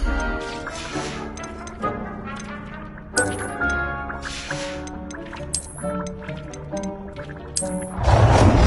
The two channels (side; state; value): both; identical; correlation 1.00